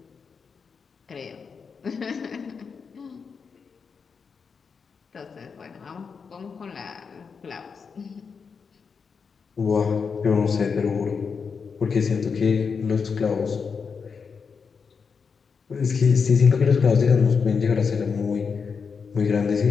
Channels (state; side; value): quieter; right; 5.7 dB